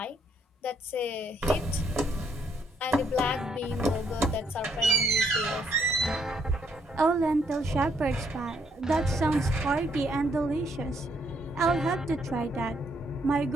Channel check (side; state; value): both; normal; correlation 0.71